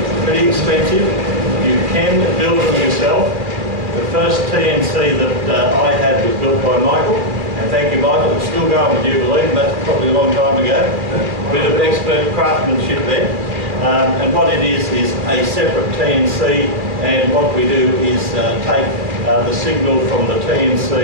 pretty expensive. You can build them yourself. The first TNC that I had was built by Michael, and thank you, Michael. It's still going with Jubilee, and that's probably a long time ago. A bit of expert craftsmanship there. And what it is a separate TNC, and what we do is take the signal from the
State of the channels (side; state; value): left; late; 2.4 ms